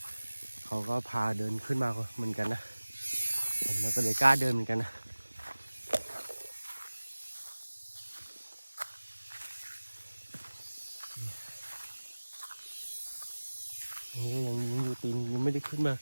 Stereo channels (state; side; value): inverted; both; correlation -1.00